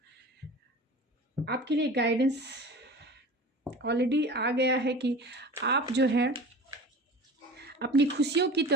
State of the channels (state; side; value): normal; both; correlation 0.37